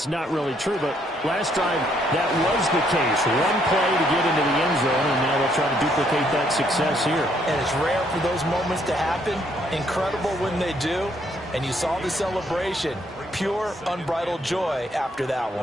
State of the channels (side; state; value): both; normal; correlation 0.69